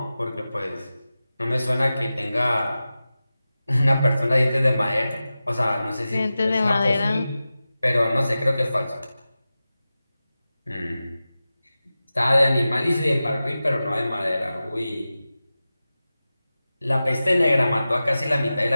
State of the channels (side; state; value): both; inverted; correlation -0.94